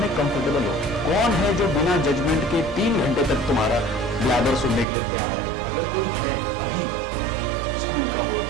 कंफर्टेबल हो? कौन है जो बिना जजमेंट के 3 घंटे तक तुम्हारा ब्लैबर सुनने के लिए तैयार है? अगर कोई है अभी, स्कूल का हो,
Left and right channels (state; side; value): drops out; left; at 4.9 s